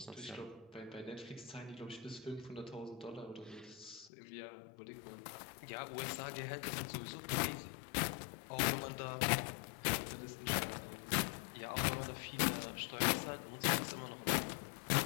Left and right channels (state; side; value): drops out; right; at 4.1 s